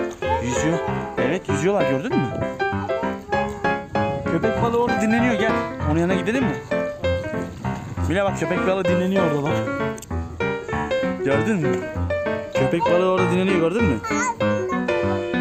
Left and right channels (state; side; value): identical; both; correlation 1.00